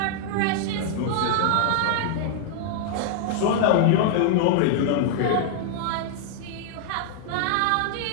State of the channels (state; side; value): different; both; correlation -0.01